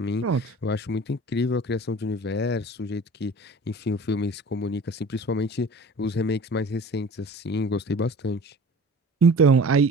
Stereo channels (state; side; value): normal; both; correlation 0.43